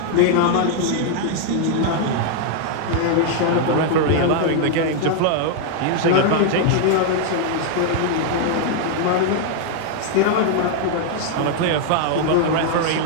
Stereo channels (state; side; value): different; both; correlation 0.00